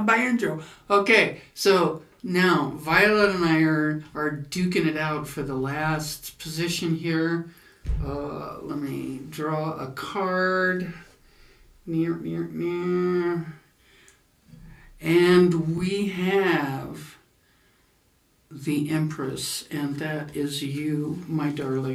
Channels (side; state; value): both; identical; correlation 1.00